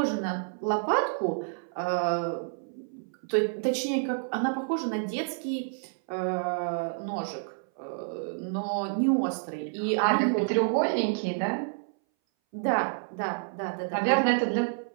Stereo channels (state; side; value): silent; left; 59 dB below the other